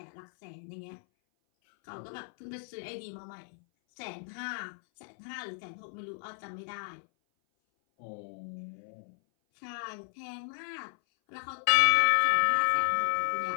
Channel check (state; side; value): silent; right; 56 dB below the other